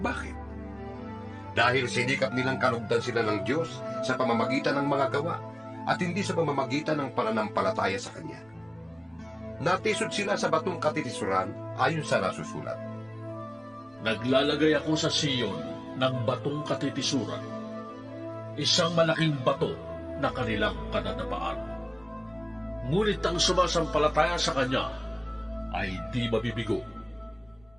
Dahil sinikap nilang kalugdan sila ng Diyos sa pamamagitan ng mga gawa at hindi sa pamamagitan ng pananampalataya sa Kanya. Natisod sila sa batong katitisuran ayon sa nasusulat. Naglalagay ako sa Siyon ng batong katitisuran, isang malaking bato na kanilang kadadapaan. Ngunit ang sumasampalataya sa Kanya ay di mabibigo.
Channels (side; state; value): right; noise; rumble, 30 dB below the sound